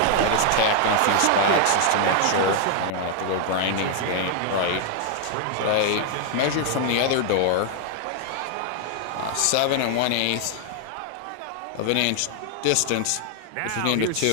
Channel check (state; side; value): different; both; correlation 0.00